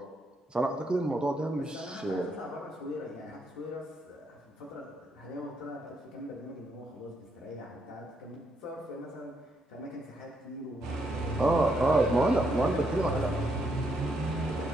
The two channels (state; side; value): normal; both; correlation 0.77